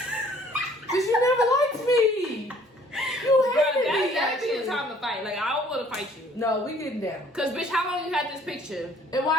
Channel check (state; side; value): normal; both; correlation 0.58